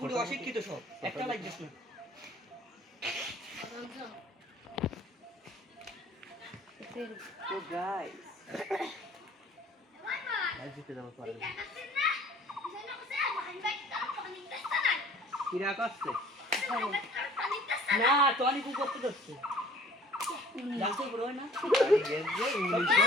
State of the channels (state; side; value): normal; both; correlation 0.53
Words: গুটি অশিক্ষিত সব একটা লাগছিস না তো গাইস আজ জিতে যাব পারবে কিরা করছে না টনি কু করতে যাচ্ছে জানতো বড় হয় না আমি গেছে ইংলিশে